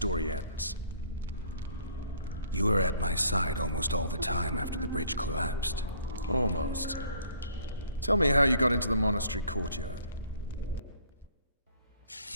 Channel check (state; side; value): inverted; both; correlation -0.58